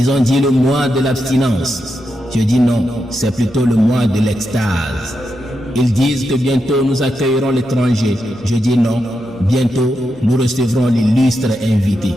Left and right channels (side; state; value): both; normal; correlation 0.86